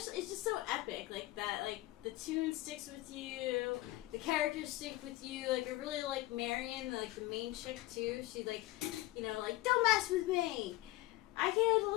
it's just so epic, like that. Like the tune sticks with you, the characters stick with you. Like I really like Marion, like the main chick too. She like, like don't mess with me. I can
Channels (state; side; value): quieter; right; 17.8 dB